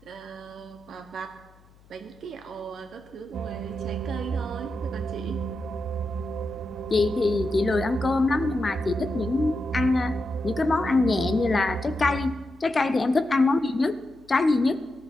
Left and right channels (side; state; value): left; noise; hum, 28 dB below the sound